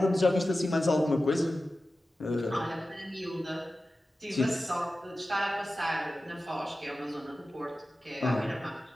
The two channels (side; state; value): both; normal; correlation 0.94